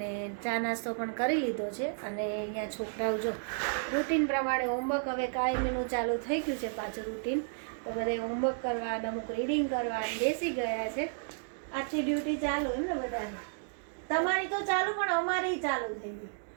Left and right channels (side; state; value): left; silent; digital silence